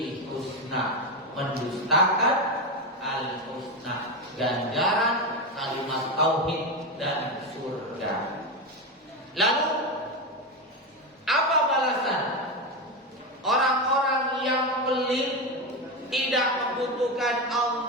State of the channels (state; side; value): normal; both; correlation 0.13